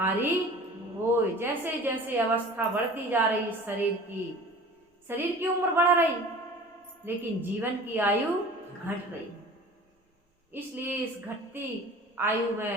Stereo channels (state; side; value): normal; both; correlation 0.43